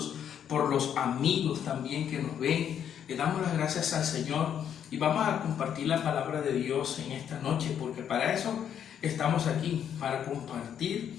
por los amigos también que nos ven. Le damos las gracias al Señor y vamos a compartir la palabra de Dios en esta noche, porque para eso estamos aquí, para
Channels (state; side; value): quieter; right; 9.0 dB